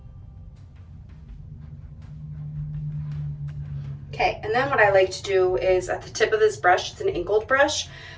Okay, and then what I like to do is at the tip of this brush, it's an angled brush,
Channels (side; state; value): both; identical; correlation 1.00